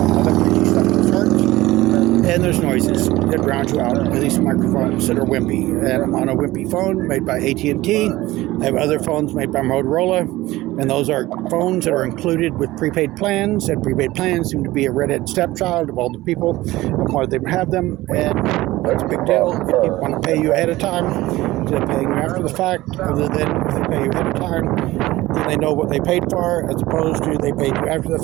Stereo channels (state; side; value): quieter; left; 17.9 dB